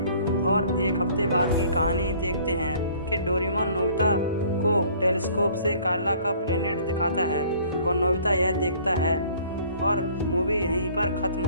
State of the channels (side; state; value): both; inverted; correlation -0.54